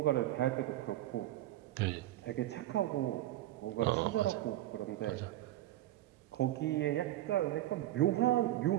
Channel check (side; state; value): left; quieter; 14.8 dB